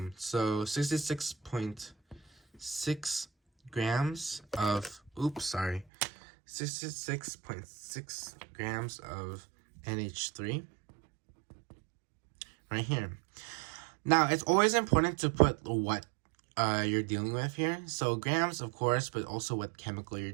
So 66.6 grams of 66.6 grams of NH3 right here. Now it's always important to put what you're dealing with here. So grams, of course, but also what chemical you're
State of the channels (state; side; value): drops out; left; at 5.9 s